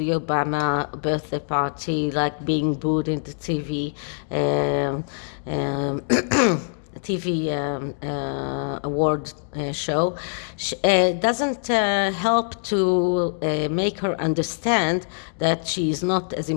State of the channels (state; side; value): silent; right; digital silence